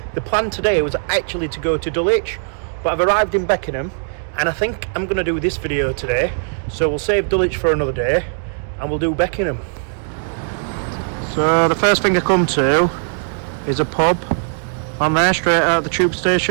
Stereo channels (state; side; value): silent; left; digital silence